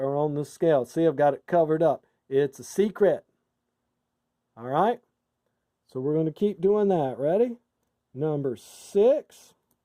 on the scale. See, I've got it covered up. It's a secret. All right? So we're going to keep doing that. Ready? Number 6.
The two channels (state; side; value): identical; both; correlation 1.00